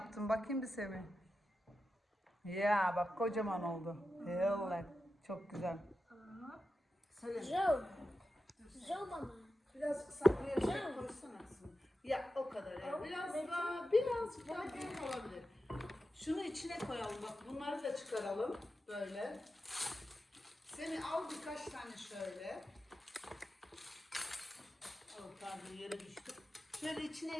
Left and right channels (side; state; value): both; normal; correlation 0.90